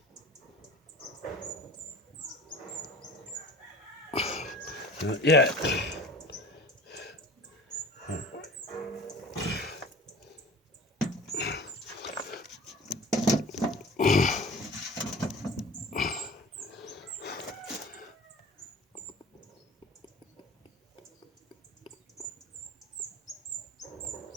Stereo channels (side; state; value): both; normal; correlation 0.40